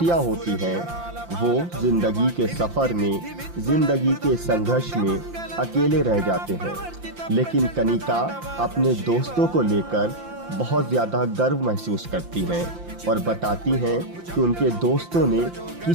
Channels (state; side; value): late; left; 5.8 ms